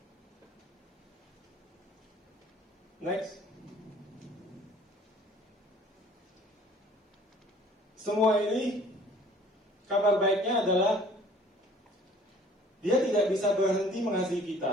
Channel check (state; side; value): normal; both; correlation 0.52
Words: Next. Semua ini kabar baiknya adalah Dia tidak bisa berhenti mengasihi